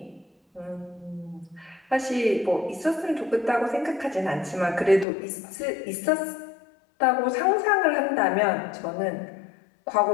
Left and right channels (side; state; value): right; drops out; at 5.1 s